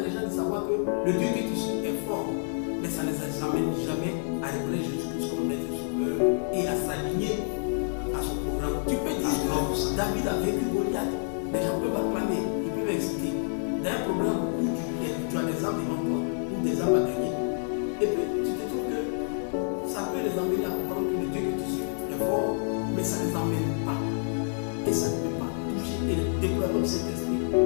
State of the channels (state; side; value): silent; right; digital silence